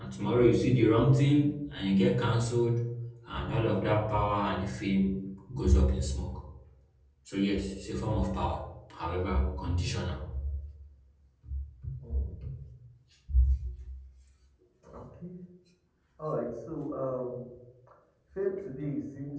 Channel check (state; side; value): identical; both; correlation 1.00